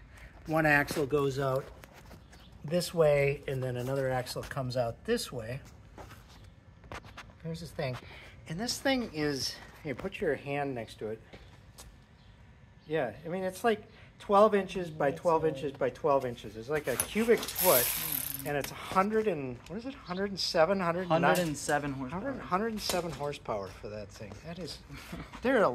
one axle goes out this way, and then another axle comes out this way. Here's this thing. And this thing is, here, put your hand next to it. Yeah, I mean, it's like 12 inches by 12 inches by 12 inches. It's like a cubic foot, and it's 100 and, what is it, 107, 107 horsepower. 107 horsepower for that thing. That is, there are a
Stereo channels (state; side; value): identical; both; correlation 1.00